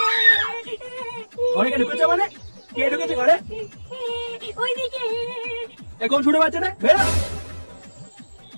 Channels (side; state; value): both; inverted; correlation -1.00